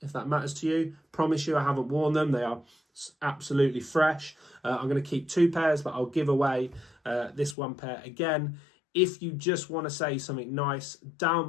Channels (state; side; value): drops out; right; at 7.6 s